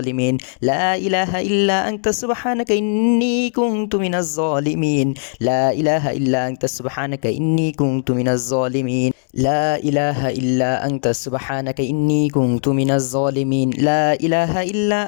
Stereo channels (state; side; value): silent; right; digital silence